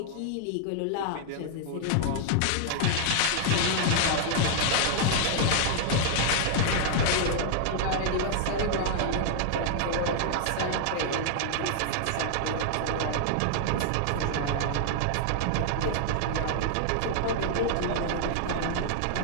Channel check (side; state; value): both; different; correlation -0.01